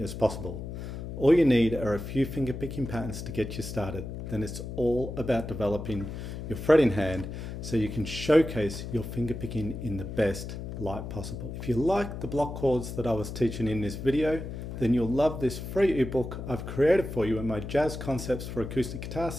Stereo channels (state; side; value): noise; left; hum, 7 dB below the sound